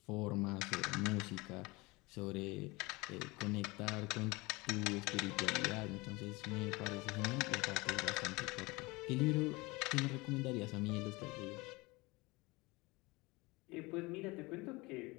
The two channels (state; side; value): quieter; right; 23.7 dB